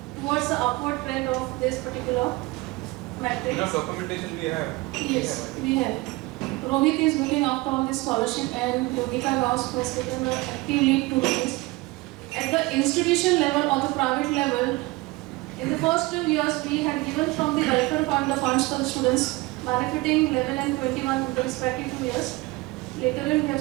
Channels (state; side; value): quieter; left; 22.1 dB